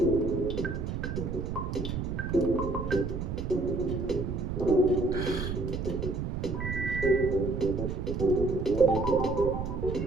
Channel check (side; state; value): right; noise; rumble, 3 dB below the sound